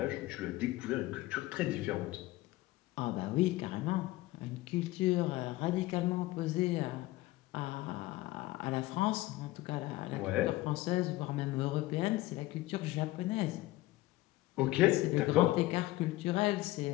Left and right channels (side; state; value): right; quieter; 18.0 dB